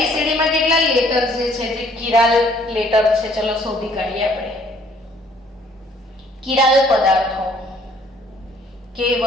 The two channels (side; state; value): both; normal; correlation 0.61